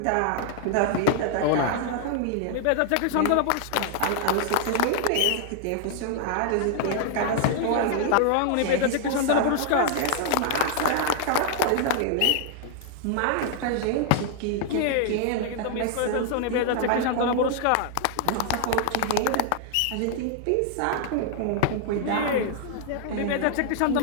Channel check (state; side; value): different; both; correlation 0.00